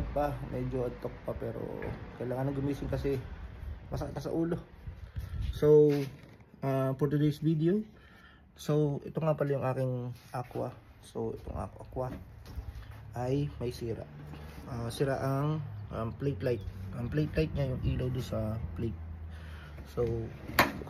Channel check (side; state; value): both; identical; correlation 1.00